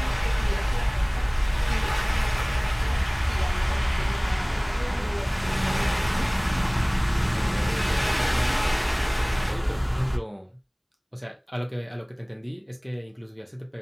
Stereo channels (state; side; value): identical; both; correlation 1.00